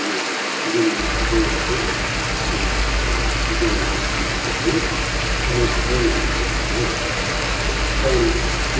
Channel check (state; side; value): identical; both; correlation 1.00